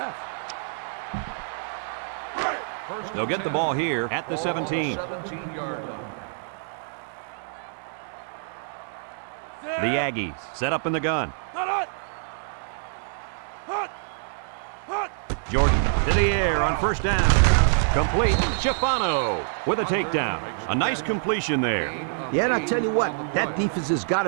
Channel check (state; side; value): silent; left; digital silence